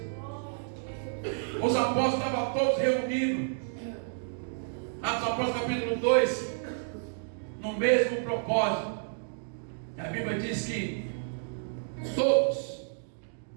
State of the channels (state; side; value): silent; left; digital silence